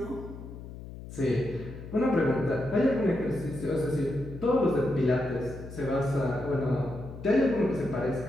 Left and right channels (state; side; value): noise; left; hum, 13 dB below the sound